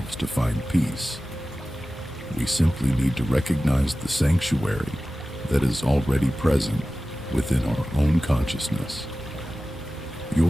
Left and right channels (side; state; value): both; normal; correlation 0.95